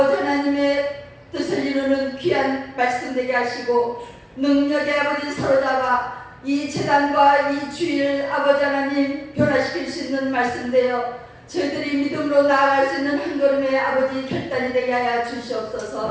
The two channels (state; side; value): identical; both; correlation 1.00